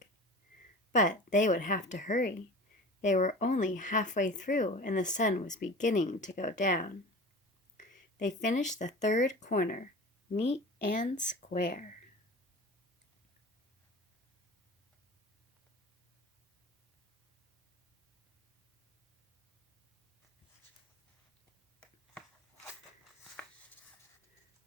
But they would have to hurry. They were only halfway through and the sun was beginning to go down. They finished the third corner, neat and square.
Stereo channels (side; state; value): both; normal; correlation 0.37